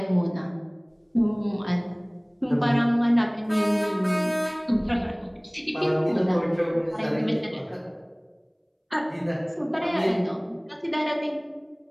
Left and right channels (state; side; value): identical; both; correlation 1.00